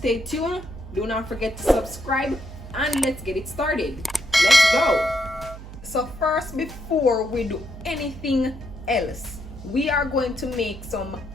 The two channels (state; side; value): noise; right; hum, 13 dB below the sound